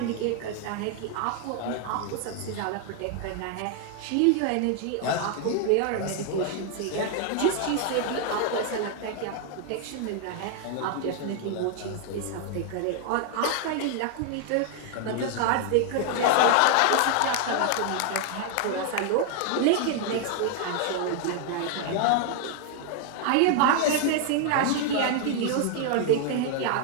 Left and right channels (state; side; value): different; both; correlation 0.00